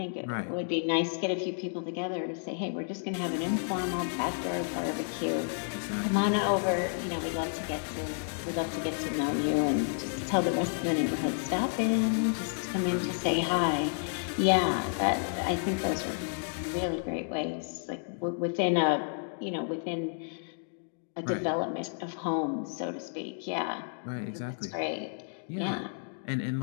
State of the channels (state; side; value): silent; right; digital silence